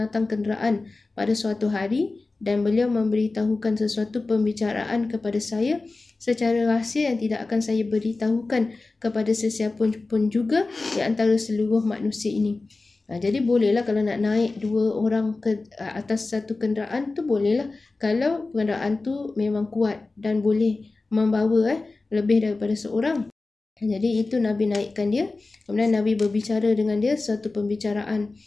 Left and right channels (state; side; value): quieter; right; 3.5 dB